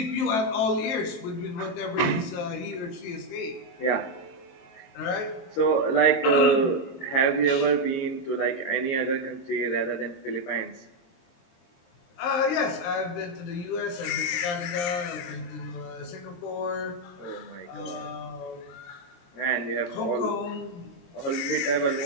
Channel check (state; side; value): late; right; 23 ms